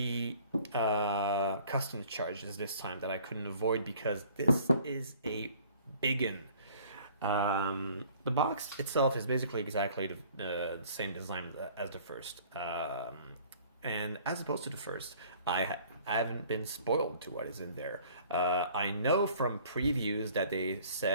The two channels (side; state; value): both; inverted; correlation -0.53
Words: customs charges this time that I couldn't avoid, because this is a biggin. The box itself is basically exactly the same design as the first. And as opposed to the first, I haven't been spoiled to what is in there. I know from previews that they